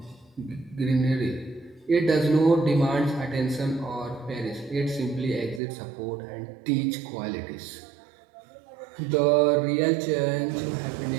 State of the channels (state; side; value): drops out; left; at 5.6 s